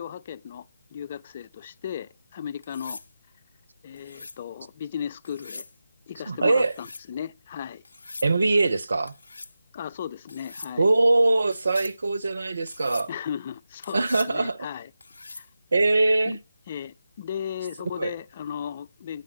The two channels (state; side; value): inverted; both; correlation -0.92